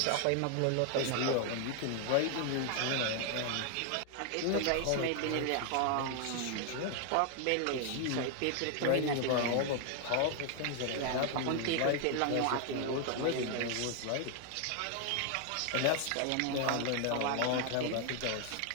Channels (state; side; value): different; both; correlation 0.00